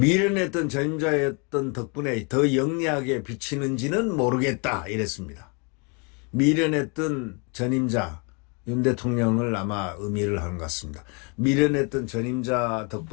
전임자였던 덕분에 더 영리하게 비치는지는 모르겠다, 이랬습니다. 미련했던 전임자 윤 대통령을 아마 의미를 하는 것 같습니다. 미련했던 전임자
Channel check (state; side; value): quieter; right; 34.0 dB